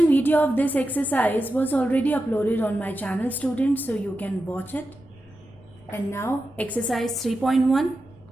video of this exercise was already uploaded on my channel, students, so you can watch it. And now exercise 3.1,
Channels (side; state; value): left; noise; rumble, 27 dB below the sound